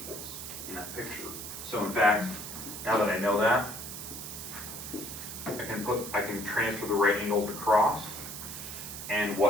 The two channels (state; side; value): noise; right; hiss, 8 dB below the sound